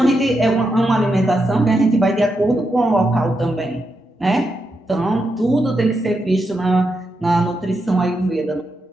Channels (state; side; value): normal; both; correlation 0.84